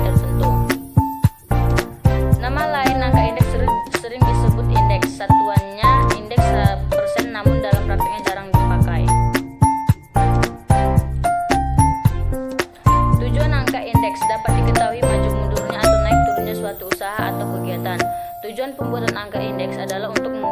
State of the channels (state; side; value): identical; both; correlation 1.00